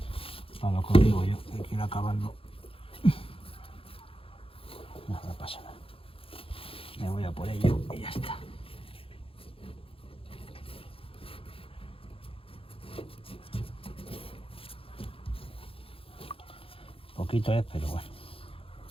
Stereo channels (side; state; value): right; late; 0.27 ms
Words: Para lo que os digo yo, hay que ir acabando. No pasa nada. Me voy a por ello y ya está. Poquito es, pero bueno.